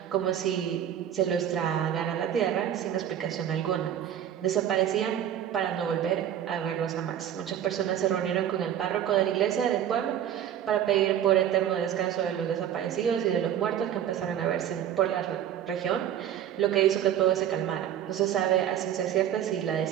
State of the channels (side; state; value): left; quieter; 10.3 dB